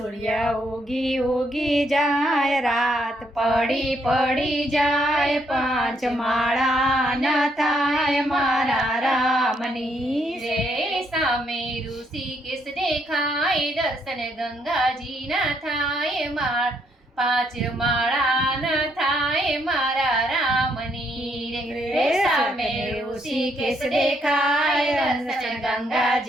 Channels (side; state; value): both; normal; correlation 0.73